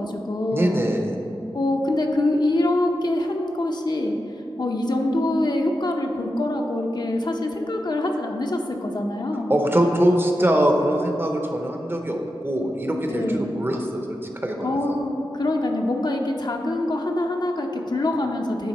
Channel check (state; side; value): normal; both; correlation 0.88